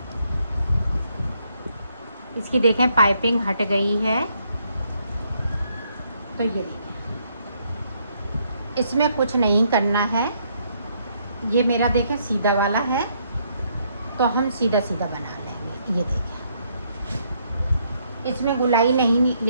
इसकी देखें पाइपिंग हट गई है। तो ये देखें, इसमें कुछ नहीं करना है। ये मेरा देखें सीधा वाला है, तो हम सीधा सीधा बना लेंगे। ये देखें, इसमें गुलाई नहीं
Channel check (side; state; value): both; inverted; correlation -0.72